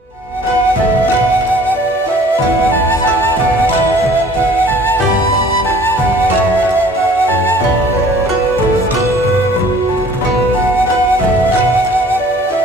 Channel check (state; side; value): normal; both; correlation 0.52